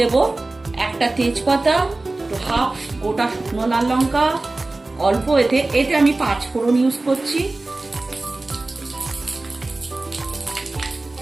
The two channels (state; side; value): quieter; left; 3.1 dB